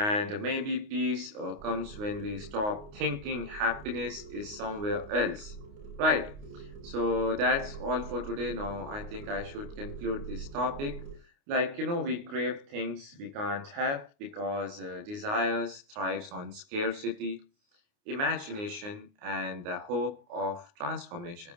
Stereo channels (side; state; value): left; late; 29 ms